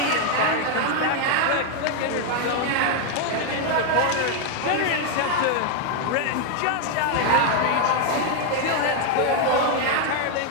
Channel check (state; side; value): different; both; correlation 0.01